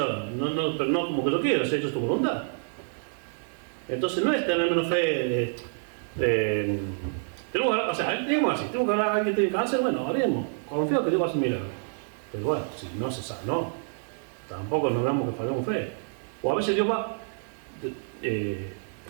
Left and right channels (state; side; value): silent; left; digital silence